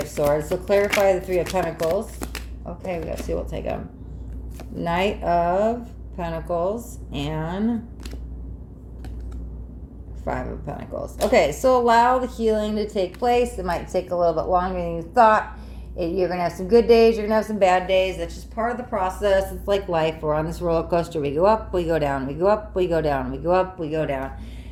Swords. So clarify the Three of Pentacles. Okay, we gotta see, we'll take them. Knight of Pentacles and Five of Pentacles. Okay, so allow the healing to take place. It might take a little bit longer than you thought. You're going to have some good days. You're going to have some bad days. That's just part of the process. It's like life. We're on this roller coaster. We go up, we go down. We go up, we go down. We go up, we go down.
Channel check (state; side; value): identical; both; correlation 1.00